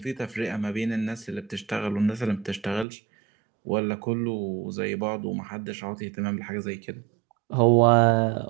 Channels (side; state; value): left; drops out; at 2.9 s